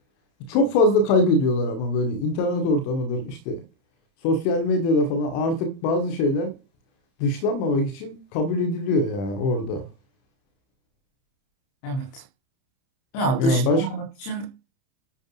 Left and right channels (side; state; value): right; late; 30 ms